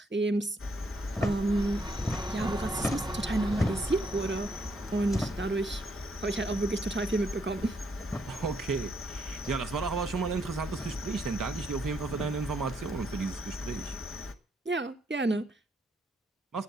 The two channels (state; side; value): normal; both; correlation 0.73